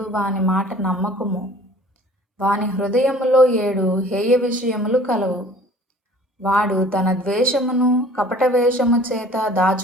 వాని మాట నమ్మకము. వాని హృదయములో 7 హేయ విషయములు కలవు. వాడు తన ద్వేషమును కపట వేషము చేత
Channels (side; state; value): both; normal; correlation 0.49